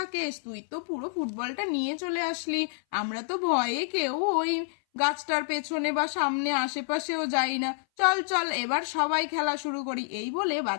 তুই তো পুরো ফুটবলটা নিয়ে চলে আসলি। আমরা তো ভয়ে কেউ ওই গাছটার পেছনে বা সামনে আশেপাশেও যাই না। চল চল, এবার সবাই খেলা শুরু করি। এই বলে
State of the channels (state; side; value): silent; right; 58 dB below the other